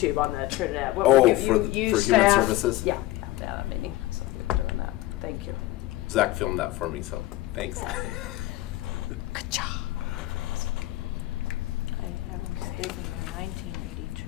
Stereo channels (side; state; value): right; quieter; 17.1 dB